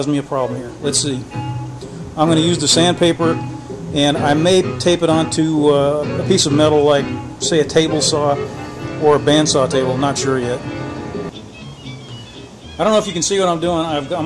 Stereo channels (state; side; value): identical; both; correlation 1.00